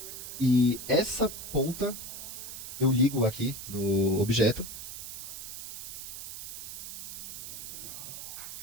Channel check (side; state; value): right; noise; hiss, 9 dB below the sound